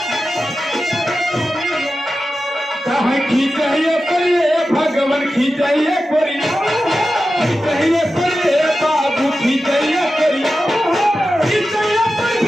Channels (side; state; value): both; normal; correlation 0.92